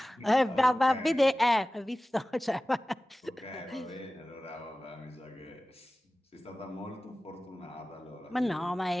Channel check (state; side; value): normal; both; correlation 0.96